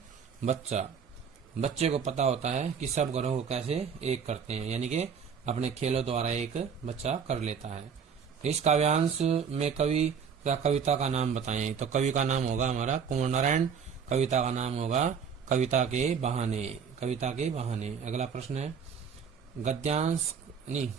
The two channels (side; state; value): left; quieter; 6.8 dB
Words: बच्चा। बच्चे को पता होता है कि सब गुणों को कैसे एक करते हैं, यानी कि अपने खेलों द्वारा एक बच्चा कर लेता है। इस काव्यांश में कवि क्या कविता का नाम बताएं, तो कवि का नाम होगा हमारा कुंवर नारायण, कविता का नाम होगा कविता के बहाने, कविता के बहाने। अगला प्रश्न है गद्यांश नहीं